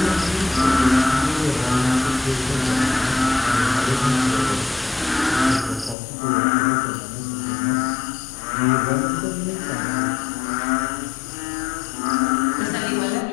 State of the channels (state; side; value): drops out; right; at 6.0 s